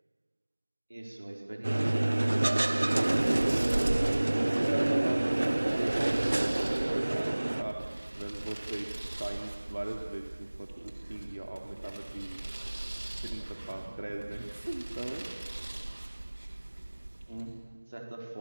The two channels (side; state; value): both; inverted; correlation -1.00